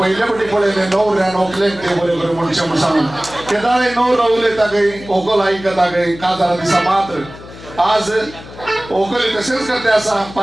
फावटी पळयलें णवऱ्या व्हंकलेक ते बरे बरे मनशां म्हूण सांगून केदाळे णवरो उलयता खंय व्हंकल आयकता खंय काजारा दिसा मात्र आज व्हंकली तशेंच करते आसा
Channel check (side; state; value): left; noise; hum, 17 dB below the sound